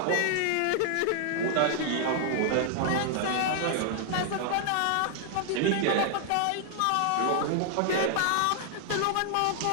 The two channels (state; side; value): different; both; correlation 0.00